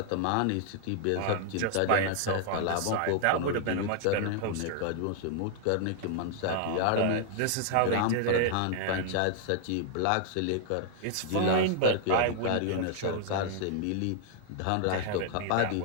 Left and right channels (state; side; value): different; both; correlation 0.00